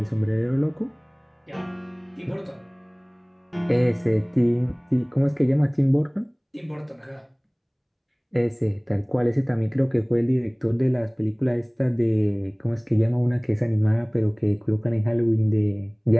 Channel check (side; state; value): both; identical; correlation 1.00